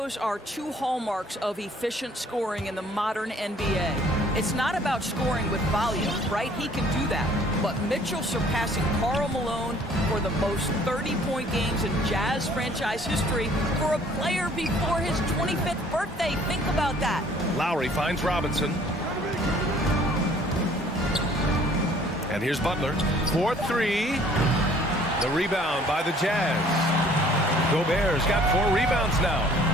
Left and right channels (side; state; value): both; normal; correlation 0.56